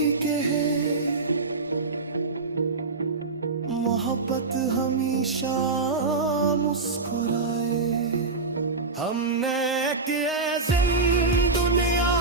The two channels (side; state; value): left; quieter; 3.9 dB